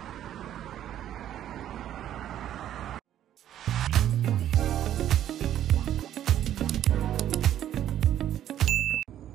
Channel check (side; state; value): left; quieter; 11.4 dB